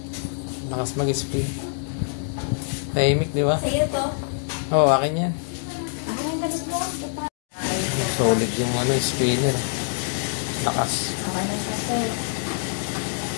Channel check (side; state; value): right; silent; digital silence